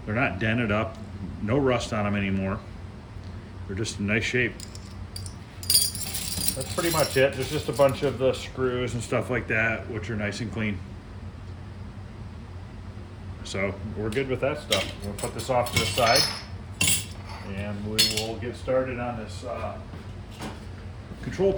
They're not dented up, no rust on them anymore. They're just in nice shape. That's pretty much it. There's just a bunch of the screws and stuff like that, which are nice and clean. So we're good with that stuff. We'll put this off to the side and we will get started on this control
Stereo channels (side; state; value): both; identical; correlation 1.00